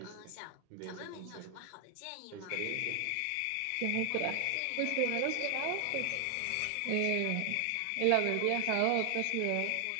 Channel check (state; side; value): different; both; correlation 0.00